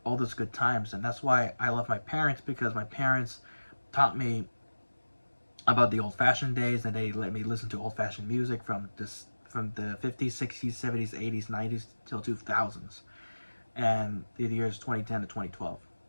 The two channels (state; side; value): inverted; both; correlation -1.00